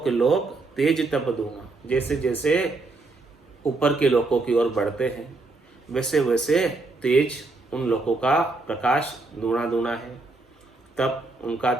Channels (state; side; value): quieter; left; 3.4 dB